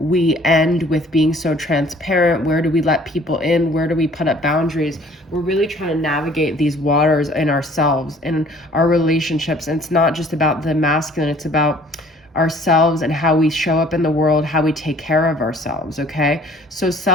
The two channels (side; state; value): both; normal; correlation 0.54